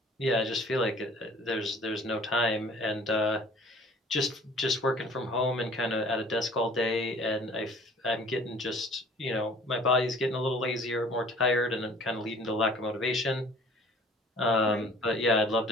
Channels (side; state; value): both; normal; correlation 0.51